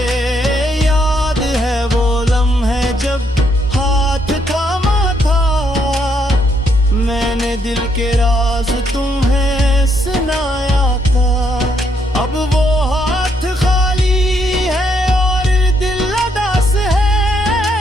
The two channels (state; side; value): normal; both; correlation 0.74